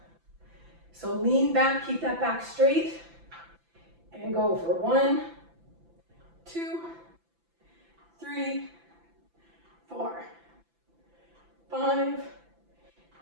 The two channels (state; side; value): late; left; 5.9 ms